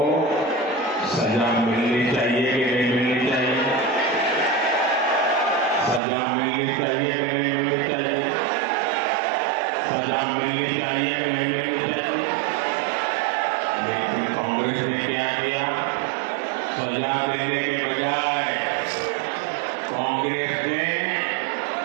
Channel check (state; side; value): drops out; left; at 6.0 s